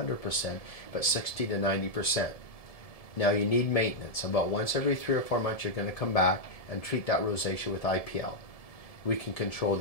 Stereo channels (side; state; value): right; late; 1.7 ms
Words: but 60 to 90%. Now you need maintenance. About once every 3 or 4 months, you're going to come back and treat that rosacea with IPL. We can control